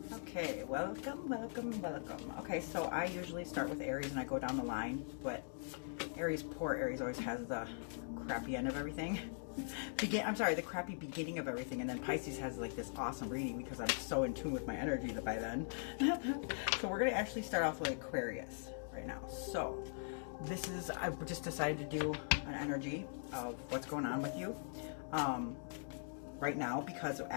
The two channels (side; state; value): right; silent; digital silence